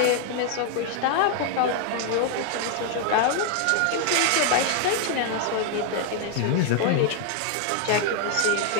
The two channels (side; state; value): both; different; correlation 0.00